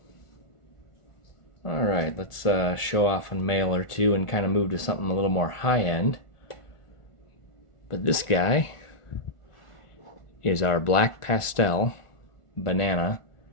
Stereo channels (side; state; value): right; late; 1.4 ms